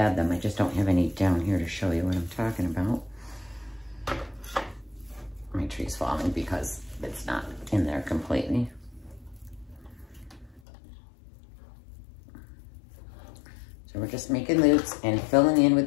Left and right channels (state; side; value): drops out; right; at 10.6 s